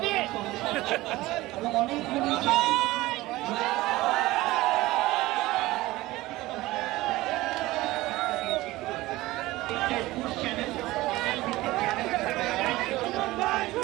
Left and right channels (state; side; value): quieter; left; 18.5 dB